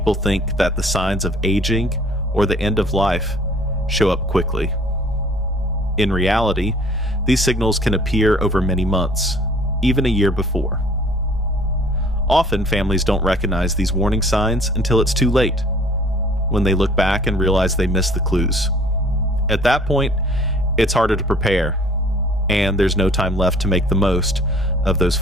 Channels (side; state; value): both; normal; correlation 0.53